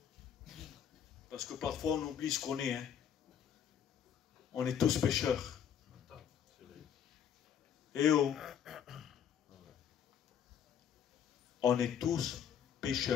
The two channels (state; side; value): quieter; right; 8.6 dB